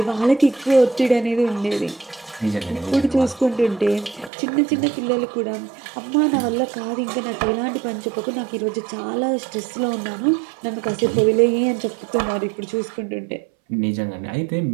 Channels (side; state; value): left; drops out; at 4.3 s